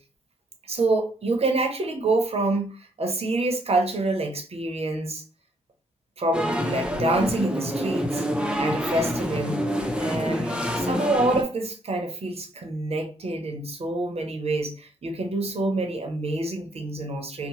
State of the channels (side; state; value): both; normal; correlation 0.68